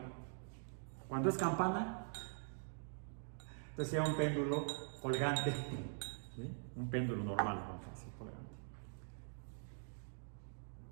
Cuando es campana, entonces sería un péndulo colgante. ¿Sí? Un péndulo normal, vamos a decir, colgante.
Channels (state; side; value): silent; left; digital silence